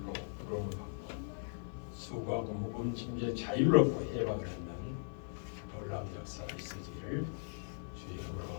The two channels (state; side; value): silent; right; 52 dB below the other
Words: 부름을 받고 수고하고 무거운 짐에 자유를 얻고 해방을 하는 놀라운 역사가 있으기를 주의